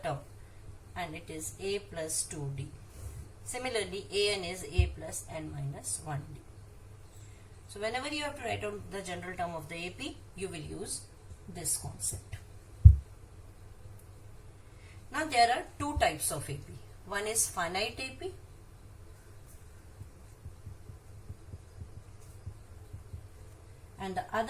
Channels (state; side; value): identical; both; correlation 1.00